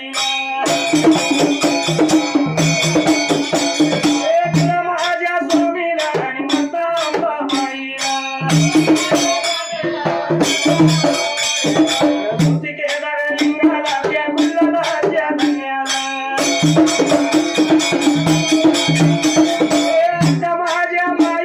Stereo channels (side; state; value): both; identical; correlation 1.00